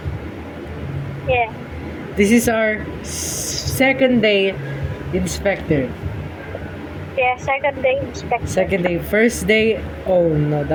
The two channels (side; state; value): both; identical; correlation 1.00